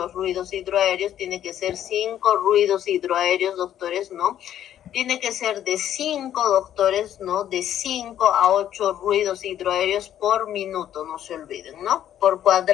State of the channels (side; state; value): right; quieter; 11.0 dB